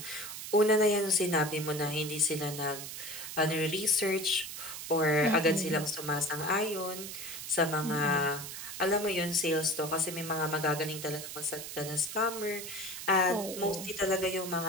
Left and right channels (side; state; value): right; noise; hiss, 8 dB below the sound